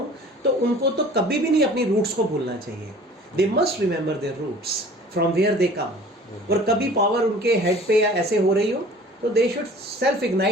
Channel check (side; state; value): both; normal; correlation 0.47